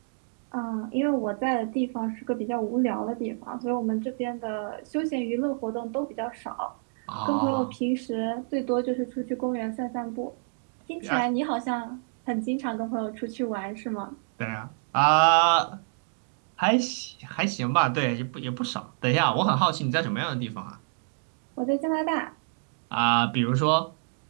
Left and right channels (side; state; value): left; silent; digital silence